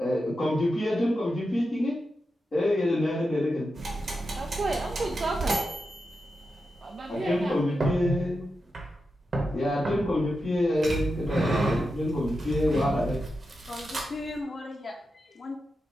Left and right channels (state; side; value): normal; both; correlation 0.89